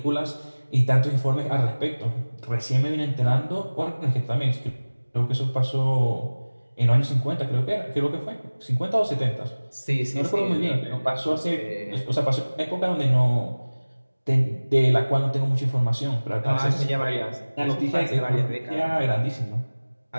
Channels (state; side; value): inverted; both; correlation -1.00